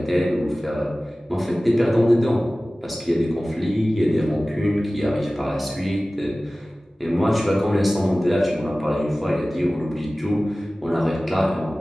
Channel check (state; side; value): normal; both; correlation 0.97